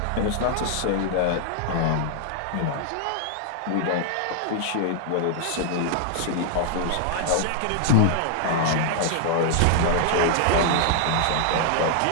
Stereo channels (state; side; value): different; both; correlation -0.01